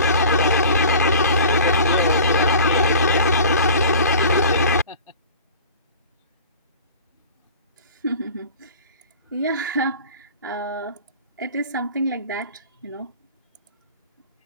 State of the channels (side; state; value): both; inverted; correlation -0.41